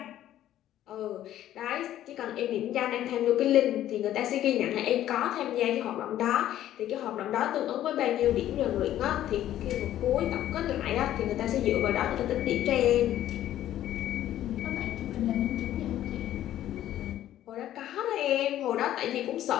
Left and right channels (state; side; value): quieter; right; 12.5 dB